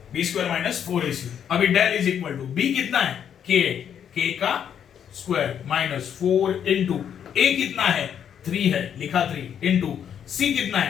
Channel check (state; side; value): quieter; right; 8.7 dB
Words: B square minus 4ac। अभी del is equal to B कितना है? k का स्क्वायर माइनस 4 इंटू ए कितना है? 3 है, लिखा 3 इंटू सी कितना